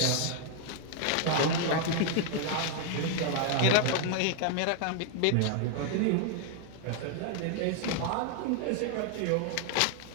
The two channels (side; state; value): both; different; correlation 0.00